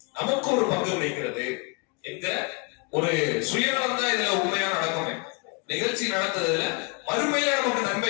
நமக்கு ஒரு பங்கு கிடைக்கிறது என்கிற ஒரு சுயநலம் தான் இதுல உண்மையா நடக்குமே. நிகழ்ச்சி நடந்ததுல மறுமையில நமக்கு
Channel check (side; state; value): right; quieter; 31.9 dB